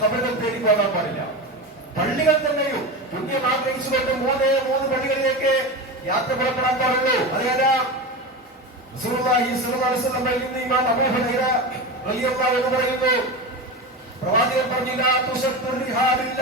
ഖബറുകൾ തേടി പോകാൻ പാടില്ല. പള്ളികൾ തന്നെയും പുണ്യം ആഗ്രഹിച്ചുകൊണ്ട് മൂന്ന് പള്ളികളിലേക്ക് യാത്ര പുറപ്പെടാൻ പാടുള്ളൂ. അതേതാ? റസൂലുള്ളാഹി സ്വല്ലല്ലാഹു അലൈഹി വസല്ലം പറയുന്നു, ഇമാം അബൂ ഹുറൈറ റളിയല്ലാഹു അൻഹു പറയുന്നു, പ്രവാചകൻ പറഞ്ഞില്ല,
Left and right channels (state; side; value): normal; both; correlation 0.23